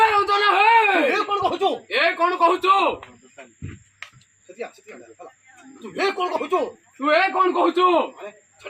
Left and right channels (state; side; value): identical; both; correlation 1.00